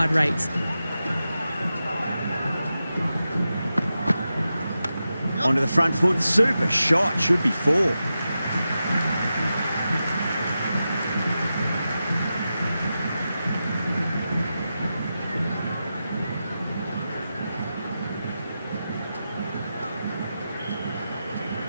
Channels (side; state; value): both; inverted; correlation -0.91